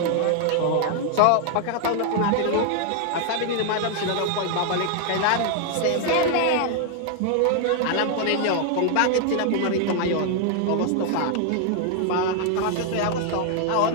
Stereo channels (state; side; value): different; both; correlation 0.00